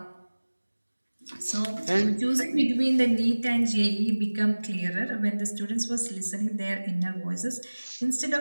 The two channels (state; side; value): inverted; both; correlation -1.00